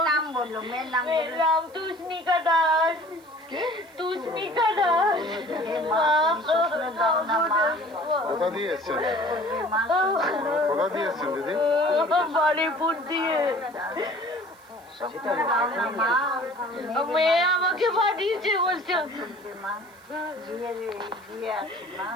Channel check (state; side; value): noise; right; hiss, 28 dB below the sound